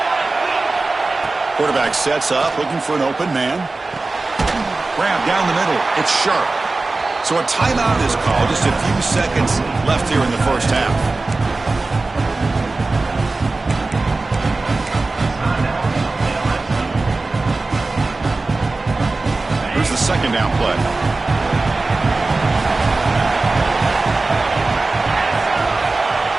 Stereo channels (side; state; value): left; quieter; 3.4 dB